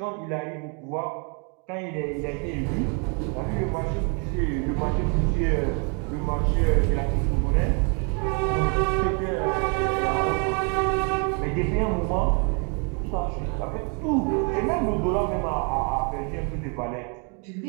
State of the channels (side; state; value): left; quieter; 37.0 dB